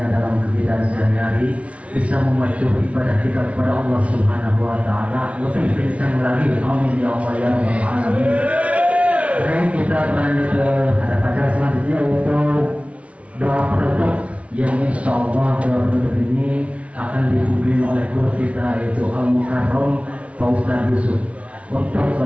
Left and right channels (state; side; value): late; left; 0.063 ms